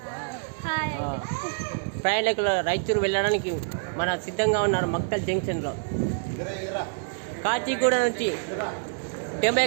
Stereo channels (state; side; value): silent; left; digital silence